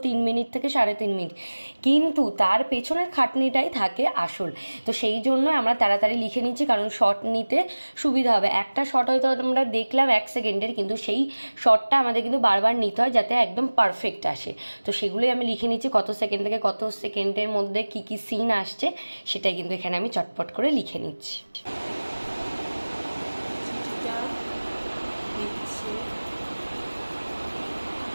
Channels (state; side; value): inverted; both; correlation -1.00